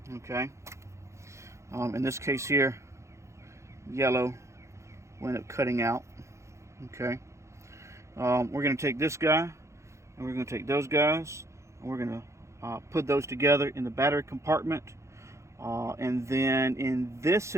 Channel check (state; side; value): late; left; 0.14 ms